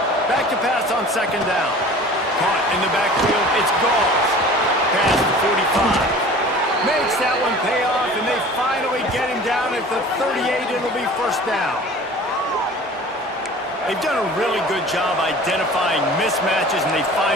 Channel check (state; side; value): normal; both; correlation 0.43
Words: Back to pass on second down. Caught in the backfield. It's Gauls. Pass to 45. Makes that one pay off, and they finally get him down at the 38. It'll be first down. They've done a really good job identifying mismatches, and they